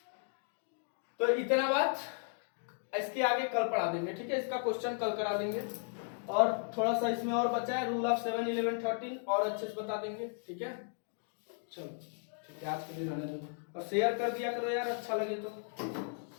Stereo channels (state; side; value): silent; right; 54 dB below the other